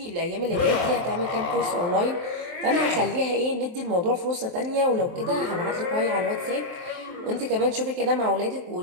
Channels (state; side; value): late; left; 23 ms